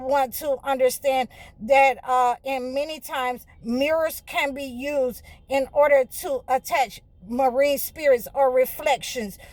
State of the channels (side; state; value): both; identical; correlation 1.00